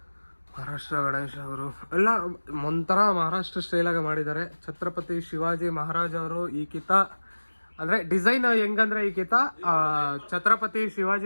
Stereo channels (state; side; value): inverted; both; correlation -1.00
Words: ಮಹಾರಾಷ್ಟ್ರ ಗಣೇಶ ಅವರು ಎಲ್ಲ ಒಂಥರ ಮಹಾರಾಷ್ಟ್ರ ಸ್ಟೈಲಾಗ ಮಾಡಿದ್ದಾರೆ. ಛತ್ರಪತಿ ಶಿವಾಜಿ ಮಹಾರಾಜ್ ಅವರು ಈ ಕಿತ ಅಂದ್ರೆ ಡಿಸೈನ್ ಹೆಂಗಂದ್ರೆ, ಈ ಕಿತ ಛತ್ರಪತಿ